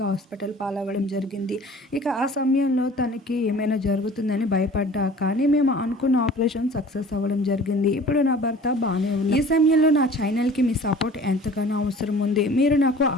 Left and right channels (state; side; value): normal; both; correlation 0.46